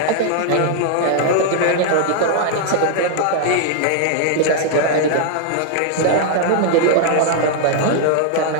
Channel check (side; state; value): both; different; correlation 0.00